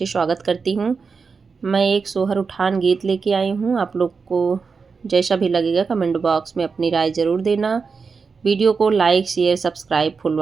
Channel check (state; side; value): quieter; left; 5.1 dB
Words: स्वागत करती हूँ। मैं एक सोहर उठान गीत लेके आई हूँ। आप लोग को जैसा भी लगेगा कमेंट बॉक्स में अपनी राय ज़रूर देना। वीडियो को like share subscribe full